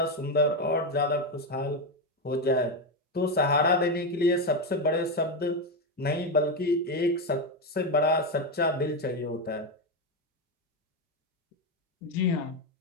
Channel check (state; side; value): normal; both; correlation 0.10